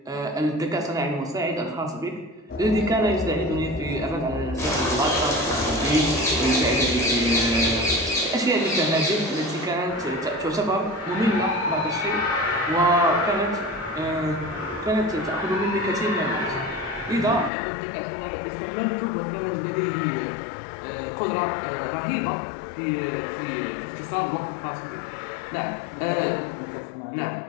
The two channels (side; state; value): right; drops out; at 17.5 s